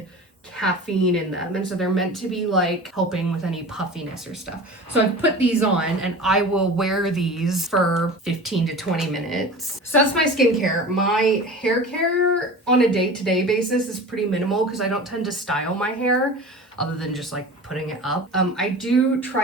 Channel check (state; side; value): normal; both; correlation 0.36